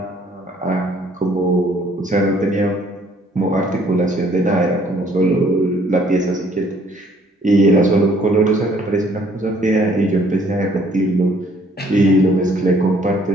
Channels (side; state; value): both; normal; correlation 0.61